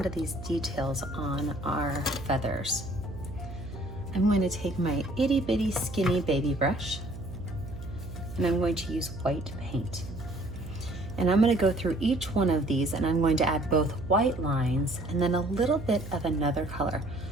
to these details on our feathers. I'm going to take my itty bitty skinny baby brush and I'm going to use white paint. And I'm going to go through each one of these and I'm going to add both white lines and then a little bit of another color.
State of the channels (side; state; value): right; noise; hum, 11 dB below the sound